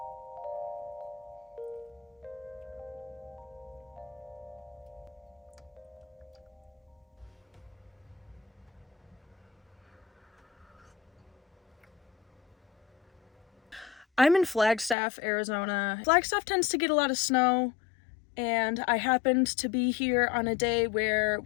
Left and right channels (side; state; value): right; drops out; at 15.0 s